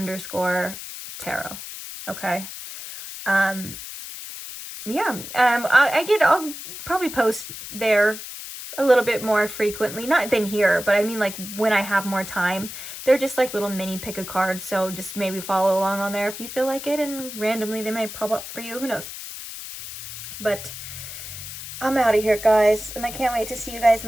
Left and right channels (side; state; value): left; noise; hiss, 10 dB below the sound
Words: Okay. Yeah. I'll probably post there a little bit more frequently, not than here, but I mean like when I have more time. They're just like little mini pick a card, so just maybe follow along on there if you feel like it, and randomly they might pop up for you, who knows. But I'm out of here, guys, and I can't wait to see you guys in